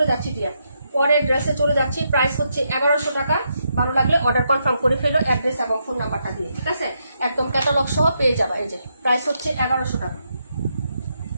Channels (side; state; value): both; inverted; correlation -0.80